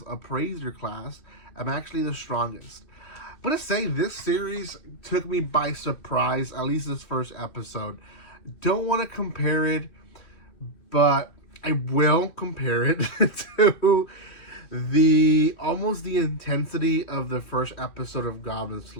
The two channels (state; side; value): late; right; 3.1 ms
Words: appraiser class. I'm actually the strongest. I'm going to say this series took me by surprise, at least this first episode. Don't want to compare it, but I will compare it to almost the intensity of the first episode of Goblin